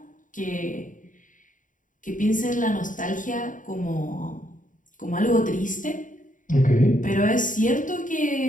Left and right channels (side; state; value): right; late; 0.38 ms